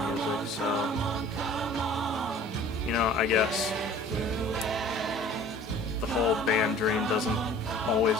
music, so I guess the whole band dream doesn't always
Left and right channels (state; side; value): normal; both; correlation 0.48